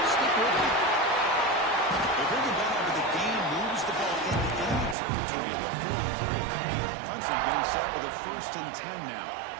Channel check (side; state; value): left; drops out; at 5.0 s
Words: Stick with it. They bring it down after the game moves the ball into enemy territory at the 43. Clemson getting set with a first and 10 now.